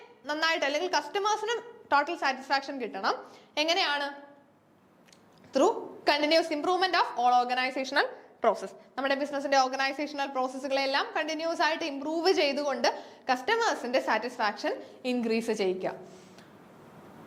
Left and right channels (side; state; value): both; identical; correlation 1.00